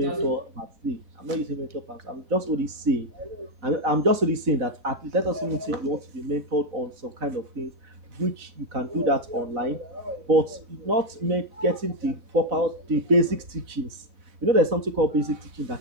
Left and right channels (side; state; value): left; late; 4.0 ms